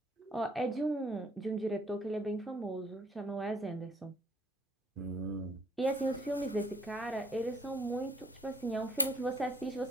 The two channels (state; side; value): normal; both; correlation 0.61